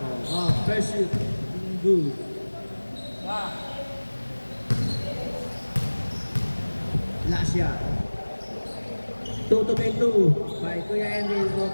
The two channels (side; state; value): both; inverted; correlation -1.00